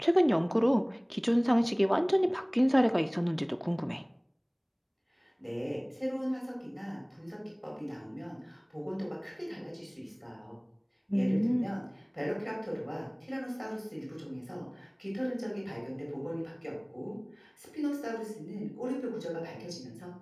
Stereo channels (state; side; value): identical; both; correlation 1.00